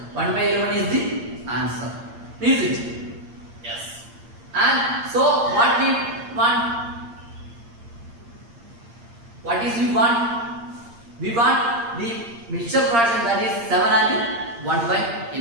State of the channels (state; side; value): late; left; 8.7 ms